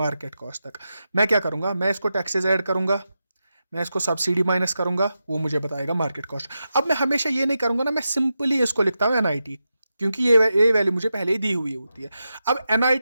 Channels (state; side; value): inverted; both; correlation -0.89